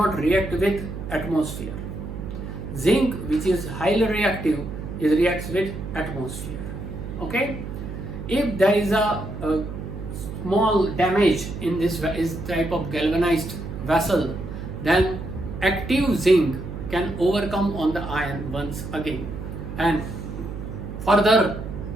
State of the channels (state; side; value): noise; right; hum, 8 dB below the sound